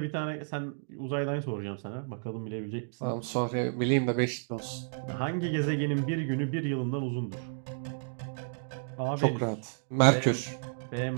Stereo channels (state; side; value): silent; left; digital silence